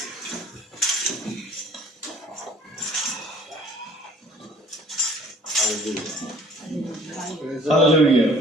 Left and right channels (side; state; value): both; normal; correlation 0.53